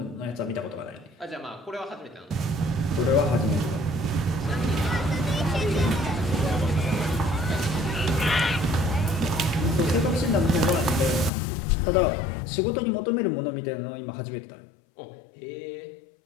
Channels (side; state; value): right; drops out; at 11.3 s